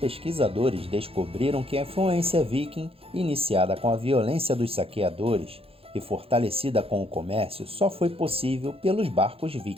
descobriram que a influência viking, iniciada com a violência dos saqueadores e fortalecida com o comércio, só foi possível pelos barcos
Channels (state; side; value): late; left; 0.27 ms